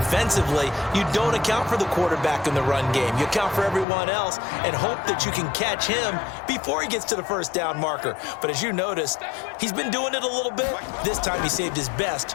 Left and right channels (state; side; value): drops out; right; at 3.9 s